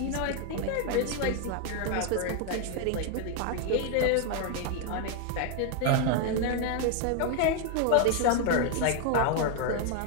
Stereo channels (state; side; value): different; both; correlation 0.00